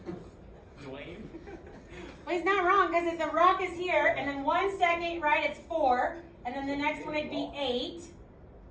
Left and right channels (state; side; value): identical; both; correlation 1.00